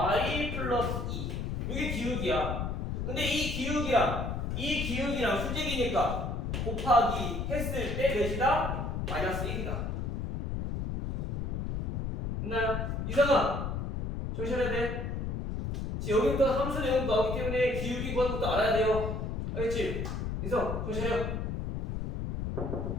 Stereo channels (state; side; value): noise; left; rumble, 2 dB below the sound